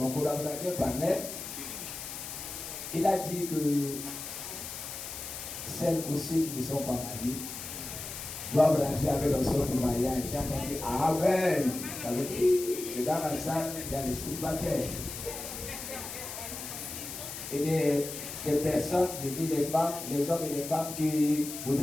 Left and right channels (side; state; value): left; noise; hiss, 8 dB below the sound